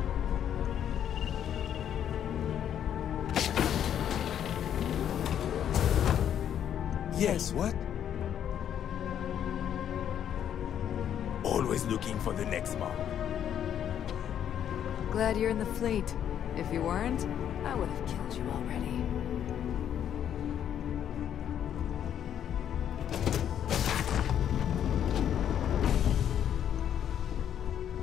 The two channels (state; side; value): quieter; right; 9.7 dB